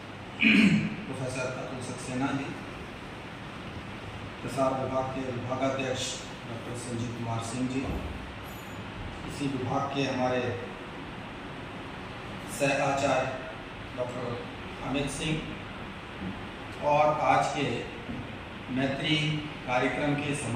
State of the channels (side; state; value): both; identical; correlation 1.00